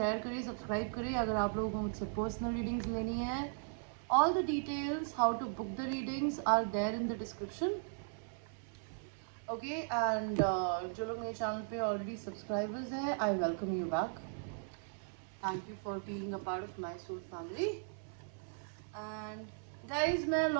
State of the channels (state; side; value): silent; left; 53 dB below the other